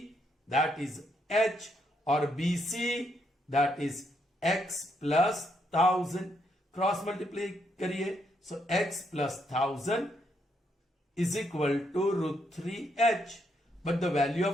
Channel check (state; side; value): normal; both; correlation 0.76